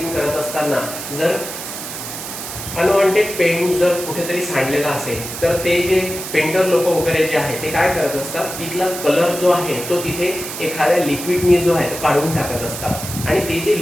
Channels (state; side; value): noise; right; hiss, 8 dB below the sound